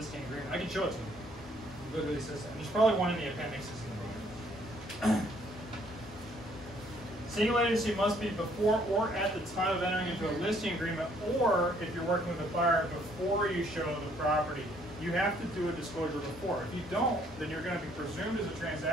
agreement. I can show it to you. It literally says that. There's probably one in the appendixes in the book. Single agency must be before or at the time of entering into a listing agreement, or if you're working with a buyer before you show the property. You have to do a disclosure before. If you don't, then you're going to be presumed as a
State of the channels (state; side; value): normal; both; correlation 0.64